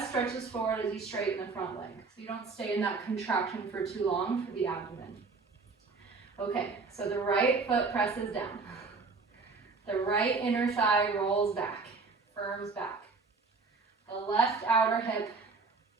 stretches forward as you straighten the front leg. So you don't stay in that contraction for too long for the abdomen. Okay, so the right foot presses down. The right inner thigh rolls back, firms back. The left outer hip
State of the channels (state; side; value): quieter; left; 4.3 dB